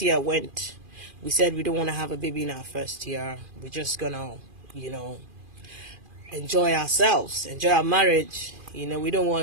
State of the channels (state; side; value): late; left; 2.4 ms